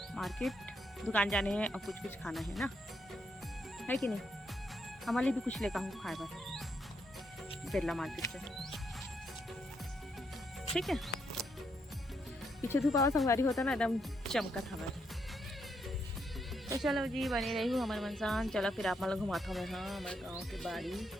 मार्केट, दुकान जाने हैं और कुछ खाना है ना, है कि नहीं। हमारे लिए भी कुछ लेकर हूँ खाए बार बिरला मार्केट से, ठीक है। पीछे धूप आवा संगवारी होता ना एकदम चमका था हमारे। तो चलो जी बनी रही हूँ हमारे मनसान। चलो फिर आप मतलब घुमाता हूँ मैं हाँ हमारे गाँव की बाड़ी।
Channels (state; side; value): normal; both; correlation 0.78